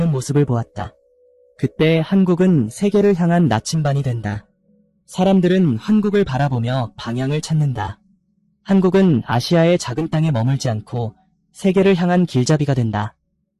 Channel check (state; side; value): identical; both; correlation 1.00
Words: 모습을 보았다. 그때 한국은 세계를 향한 나침반이 된다. 사람들은 한국을 바라보며 방향을 찾는다. 한국은 아시아의 작은 땅에 머물지 않고 세계를 향한 길잡이가 된다.